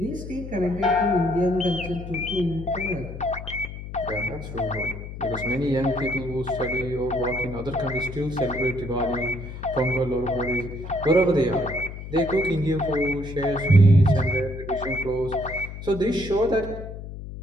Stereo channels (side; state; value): left; noise; hum, 10 dB below the sound